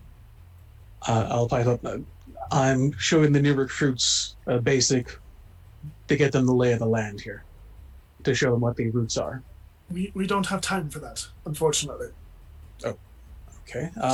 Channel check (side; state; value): both; identical; correlation 1.00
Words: I'll pipe up. I'm showing the new recruits a basic to get them the lay of the land here, to show them what the routes are. We don't have time for that, unfortunately. Oh, okay.